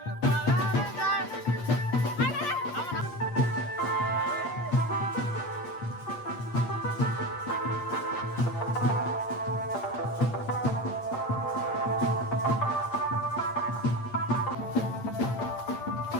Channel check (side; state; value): right; late; 8.6 ms